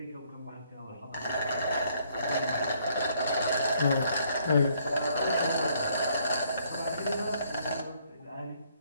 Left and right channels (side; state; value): both; inverted; correlation -0.67